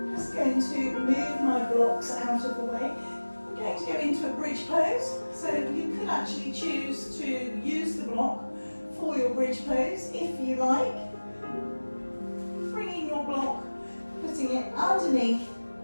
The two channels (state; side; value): inverted; both; correlation -1.00